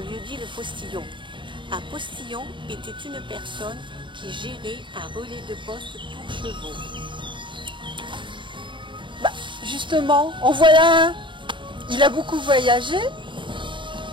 le postillon. Un postillon était une personne qui gérait un relais de poste pour chevaux. Justement, en voilà un. Il a beaucoup voyagé.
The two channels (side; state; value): left; late; 0.23 ms